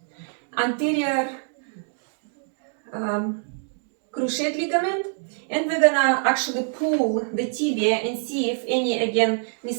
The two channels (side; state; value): left; silent; 62 dB below the other